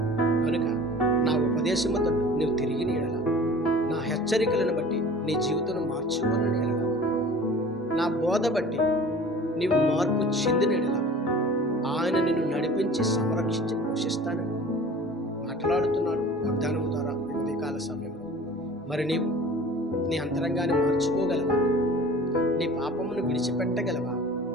కనుక నా ఉపదేశముతో నువ్వు తిరిగి నీడల, నా హెచ్చరికలను బట్టి నీ జీవితం మార్చుకొని నీడల, నా బోధ బట్టి నీవు మార్పు చెందినడల ఆయన నిన్ను నడిపించి సంరక్షించి పోషిస్తానని మాట్లాడుతున్నాడు వాగ్దానం ద్వారా ఉదయకాల సమయంలో. మరి నీవు నీ అంతరంగాన్ని మార్చుకోగలవా? నీ పాపమును విడిచిపెట్టగలవా?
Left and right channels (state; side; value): normal; both; correlation 0.43